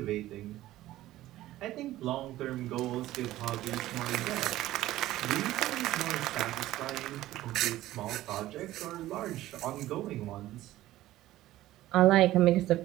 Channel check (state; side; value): quieter; left; 15.3 dB